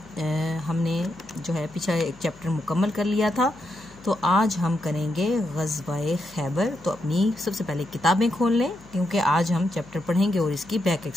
हमने जो है पीछे एक चैप्टर मुकम्मल कर लिया था। तो आज हम करेंगे ग़ज़वा-ए खैबर। तो अपनी सबसे पहले किताबें खोल लें, क्योंकि आज हम चैप्टर पढ़ेंगे और इसकी बैक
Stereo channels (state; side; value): noise; left; hum, 24 dB below the sound